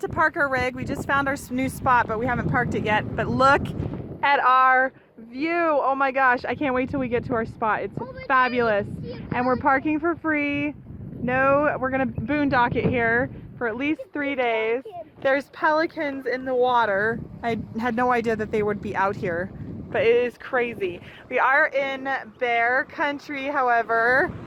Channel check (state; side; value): identical; both; correlation 1.00